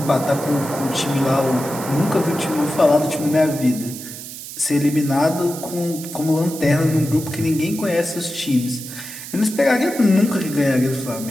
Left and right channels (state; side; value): noise; right; hiss, 11 dB below the sound